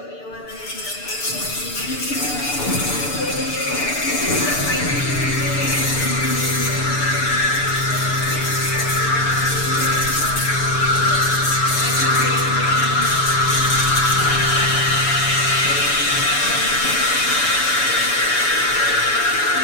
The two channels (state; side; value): late; right; 6.9 ms